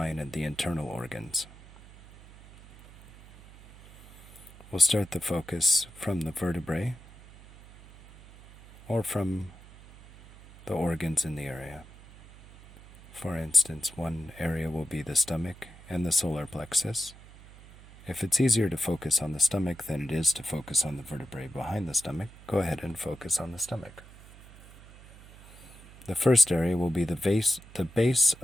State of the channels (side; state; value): right; noise; hum, 20 dB below the sound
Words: and the internal organs. We'll start the focus from the vertebrae or from the organs in the area. For instance, one area will be the stomach and the solar plexus. If it's easier to focus on the stomach than it is to focus on the vertebrae behind the stomach, go ahead and focus on the stomach. The first area will be the base